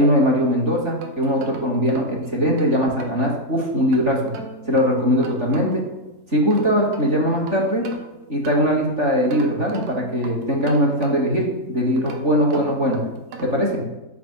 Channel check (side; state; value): left; late; 3.4 ms